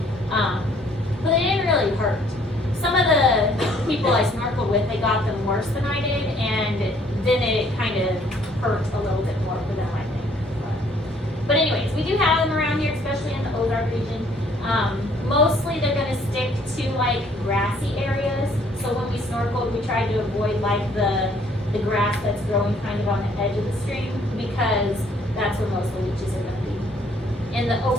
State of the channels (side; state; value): both; normal; correlation 0.62